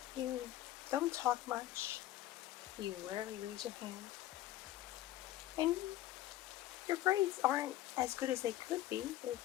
You don't talk much. You rarely raise your hand. And your grades aren't as good as they could be.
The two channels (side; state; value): right; quieter; 14.3 dB